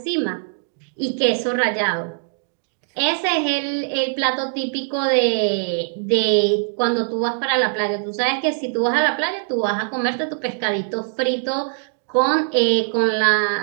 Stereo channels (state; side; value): silent; left; digital silence